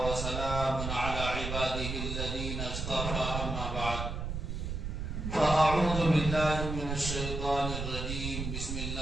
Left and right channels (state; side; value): noise; right; rumble, 4 dB below the sound